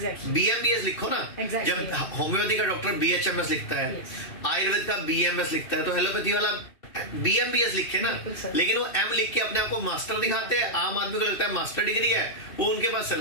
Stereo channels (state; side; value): late; right; 2.7 ms